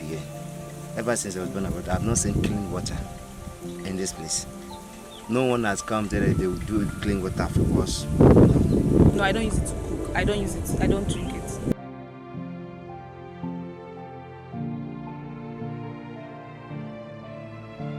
Ever since I was born and brought up, I have not seen clean water in this place. No one has come there, they will do clean water for us. No, I don't use it to cook. I don't use it. I don't drink it.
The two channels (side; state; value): both; identical; correlation 1.00